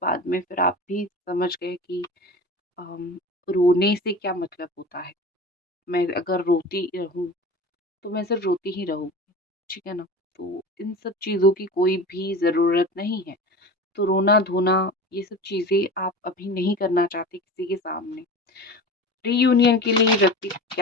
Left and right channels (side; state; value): both; normal; correlation 0.33